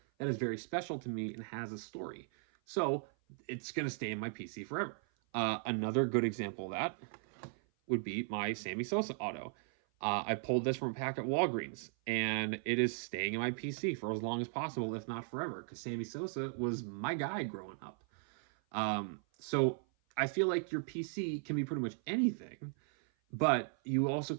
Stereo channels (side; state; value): left; silent; 53 dB below the other